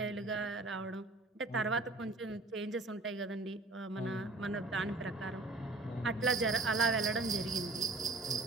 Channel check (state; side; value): quieter; left; 3.0 dB